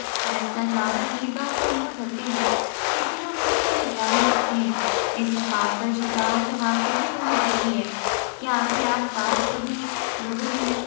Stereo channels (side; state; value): right; silent; digital silence